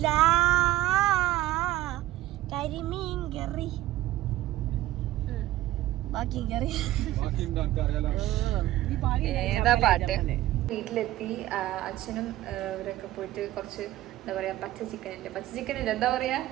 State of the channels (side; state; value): left; quieter; 15.2 dB